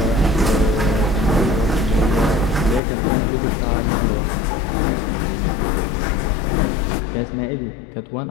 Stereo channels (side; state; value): right; drops out; at 2.8 s